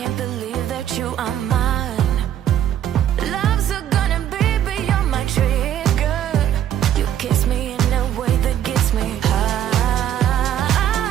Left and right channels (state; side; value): quieter; left; 10.7 dB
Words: believe that you are mine. Love's gonna be beyond my trigger. You kiss me in a way that gets me high.